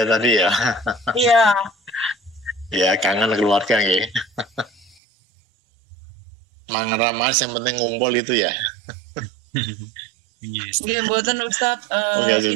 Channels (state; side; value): drops out; left; at 5.0 s